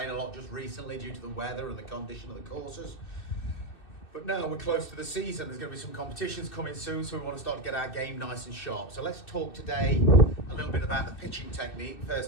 a lot just recently due to the weather and the condition of the courses. But now we're close to the season, there's going to be some competitions coming soon, so we want to start to get our game nice and sharp. So let's talk today a little bit about the pitching technique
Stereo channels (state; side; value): late; right; 2.6 ms